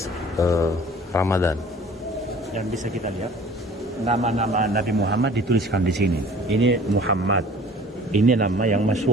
Ramadan. Yang bisa kita lihat nama-nama Nabi Muhammad dituliskan di sini. Ini Muhammad. Ini nama yang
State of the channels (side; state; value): both; normal; correlation 0.48